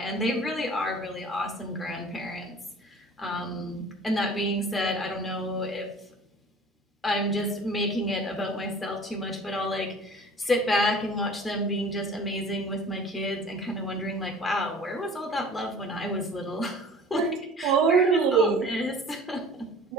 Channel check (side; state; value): both; normal; correlation 0.44